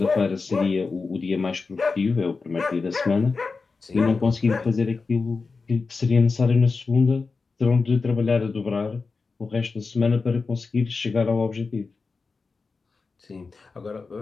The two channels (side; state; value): right; quieter; 4.4 dB